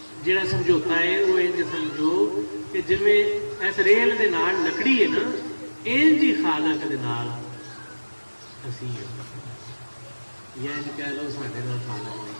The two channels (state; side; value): inverted; both; correlation -1.00